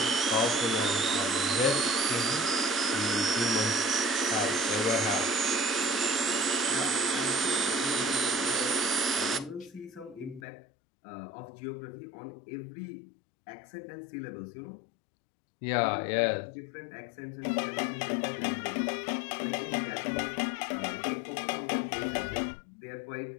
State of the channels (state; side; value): drops out; right; at 10.4 s